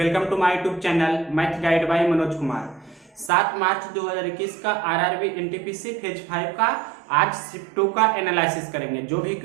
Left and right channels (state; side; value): drops out; left; at 3.3 s